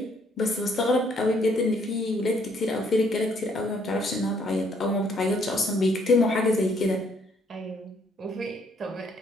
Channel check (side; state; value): both; normal; correlation 0.67